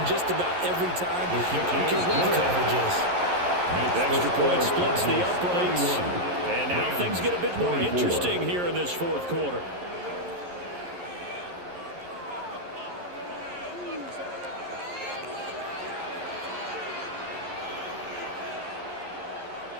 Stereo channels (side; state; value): left; late; 11 ms